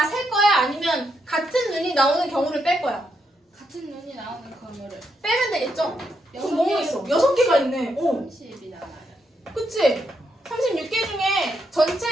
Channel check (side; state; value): both; normal; correlation 0.80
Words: 셀 거야? 아니면 같은 눈이 나오는 경우를 뺄 거야? 같은 눈이 나오는 경우를 빼면 되겠죠? 여섯 그럼 뭐가 개. 있어? 6개가 있네. 30이 나와요. 그치? 36개 중에